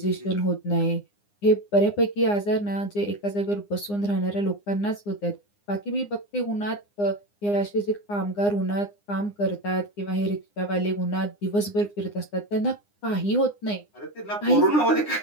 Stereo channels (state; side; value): late; right; 9.8 ms